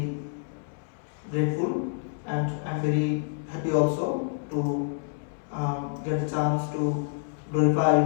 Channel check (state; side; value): silent; right; 59 dB below the other